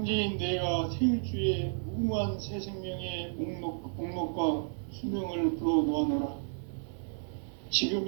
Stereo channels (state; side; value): silent; left; digital silence